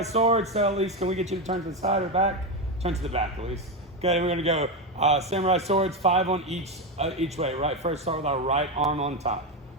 sword. So Elise, can we get you to turn to the side or back? Turn to the back, Elise. Okay, we're gonna go samurai swords, 5 on each way. Right, first start with our right arm on top.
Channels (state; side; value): normal; both; correlation 0.12